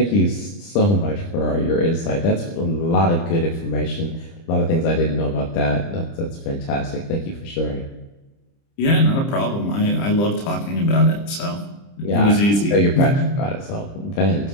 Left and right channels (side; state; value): right; late; 30 ms